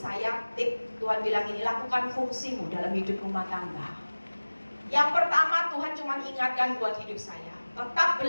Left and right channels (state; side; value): inverted; both; correlation -1.00